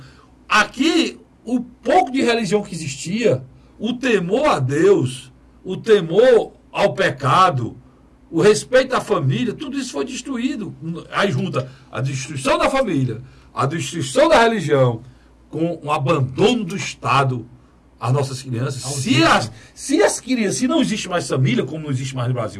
Aqui, o pouco de religião que existia, o temor a Deus, o temor ao pecado, o respeito à família, tudo isso foi destruído. Aí junta a destruição da família, a destruição da religião, com o abandono do Estado às nossas crianças. Se não existe mais família, como não existe mais no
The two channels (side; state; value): both; identical; correlation 1.00